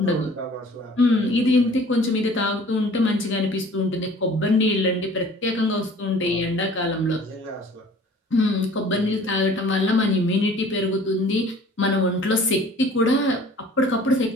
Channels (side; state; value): both; normal; correlation 0.49